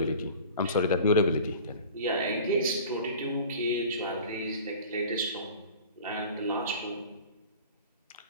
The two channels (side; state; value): both; inverted; correlation -0.40